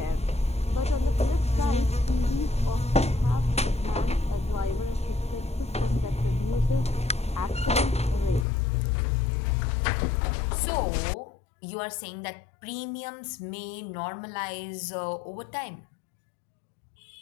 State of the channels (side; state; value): right; drops out; at 8.5 s